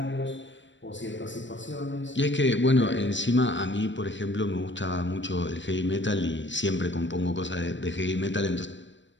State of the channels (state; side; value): late; right; 0.54 ms